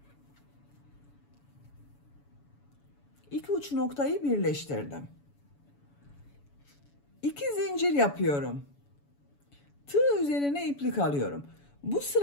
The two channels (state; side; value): late; right; 7.0 ms